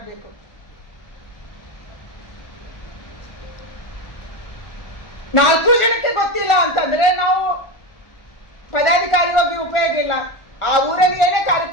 4 ಜನಕ್ಕೆ ಗೊತ್ತಿಲ್ಲ ಅಂತಂದ್ರೆ ನಾವು ಪದಾಧಿಕಾರಿ ಹೋಗಿ ಉಪಯೋಗ ಇಲ್ಲ. ಆ ಊರಲ್ಲಿ ಏನೇ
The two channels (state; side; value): late; right; 1.4 ms